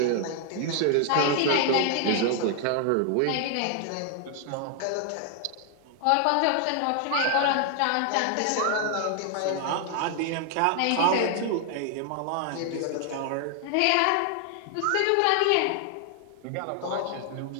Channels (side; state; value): both; different; correlation 0.00